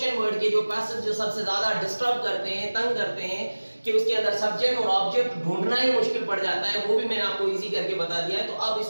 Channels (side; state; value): both; inverted; correlation -1.00